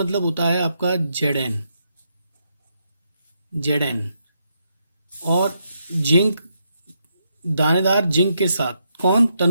होता है आपका Zn और जिंक, दानेदार जिंक के साथ कौन,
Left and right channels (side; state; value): both; inverted; correlation -0.79